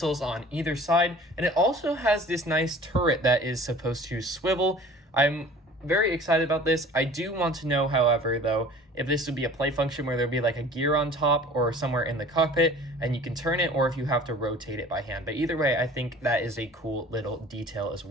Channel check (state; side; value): normal; both; correlation 0.46